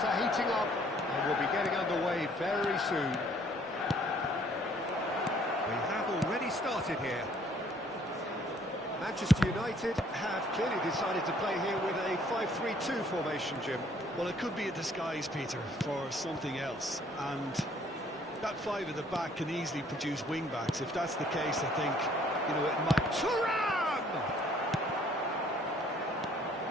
are heating up, and we'll be getting underway very soon. We have already started here. Manchester United have clearly decided to play here with a 5-3-2 formation, Jim. Well, it could be a disguise, Peter, for something else. And that five at the back can easily produce wing-backs. If that's the case, I think, you know, it might... Thuram!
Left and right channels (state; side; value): normal; both; correlation 0.61